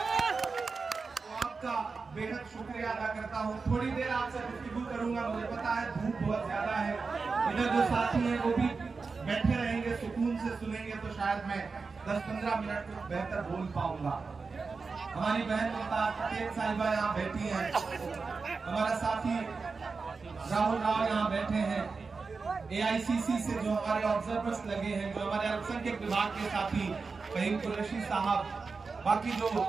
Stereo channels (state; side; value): quieter; left; 4.5 dB